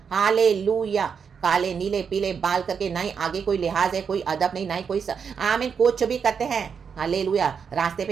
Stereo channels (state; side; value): quieter; left; 6.6 dB